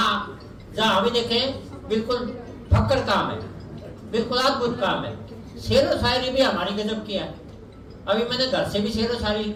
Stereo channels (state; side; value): identical; both; correlation 1.00